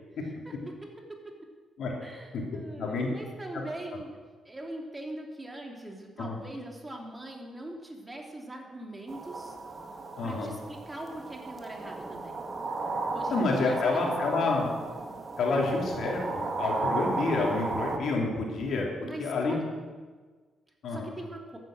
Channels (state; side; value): normal; both; correlation 0.75